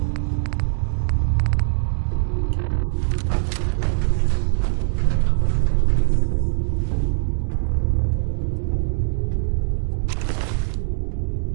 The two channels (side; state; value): left; silent; digital silence